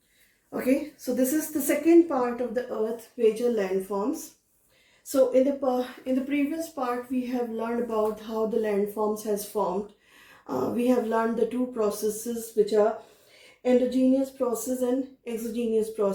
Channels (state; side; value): identical; both; correlation 1.00